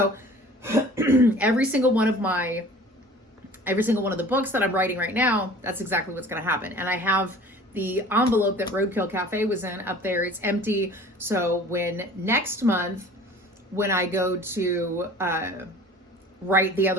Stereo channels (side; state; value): both; normal; correlation 0.45